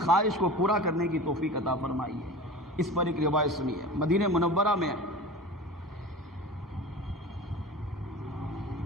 کو پورا کرنے کی توفیق عطا فرمائی ہے. اس پر ایک روایت سنی ہے. مدینہ منورہ میں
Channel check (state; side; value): normal; both; correlation 0.34